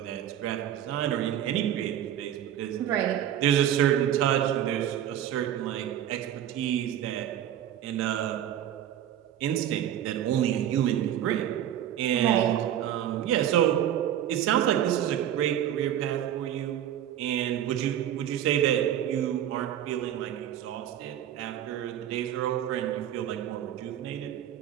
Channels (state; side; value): quieter; left; 10.9 dB